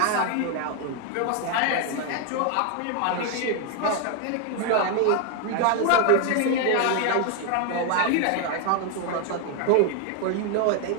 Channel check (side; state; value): both; different; correlation 0.01